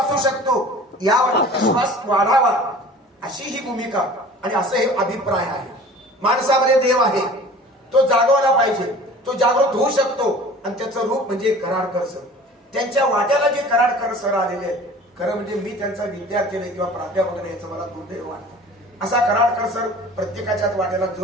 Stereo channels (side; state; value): both; normal; correlation 0.44